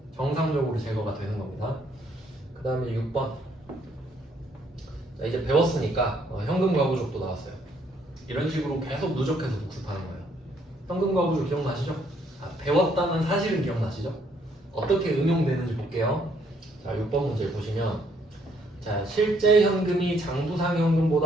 정상적으로 제거가 되는 겁니다. 그 다음에 6번. 자, 이제 배웠으니까 현금과부족도 나왔어요. 이런 식으로 계속 누적해서 복습하는 거예요. 현금과부족 기억나시죠? 배웠다는 사실은 기억나시죠? 어떻게 응용되는지 볼게요. 자, 6번 문제 보시면 자, 실제 현금이 장부상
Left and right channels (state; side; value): normal; both; correlation 0.68